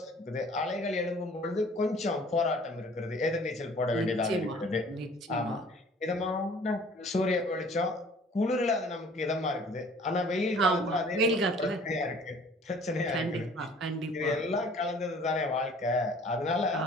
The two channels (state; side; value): normal; both; correlation 0.52